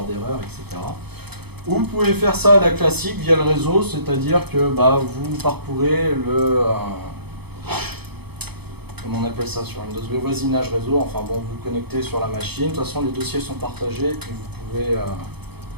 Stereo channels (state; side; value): late; left; 0.98 ms